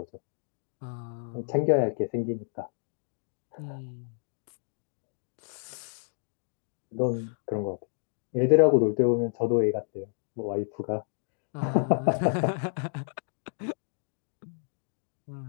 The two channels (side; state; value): right; silent; digital silence